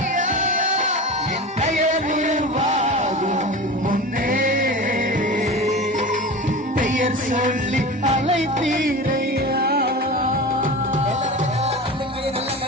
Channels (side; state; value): both; normal; correlation 0.31